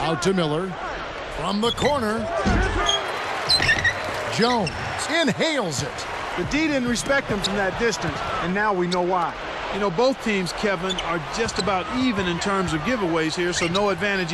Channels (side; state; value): both; identical; correlation 1.00